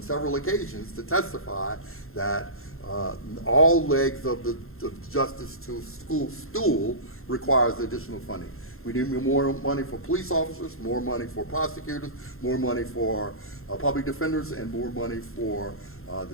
several occasions to testify that all legs of the justice to school stool requires additional funding. We need more money for police officers, more money for prosecutors, more money for public defenders, and more money for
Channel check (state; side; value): late; right; 0.61 ms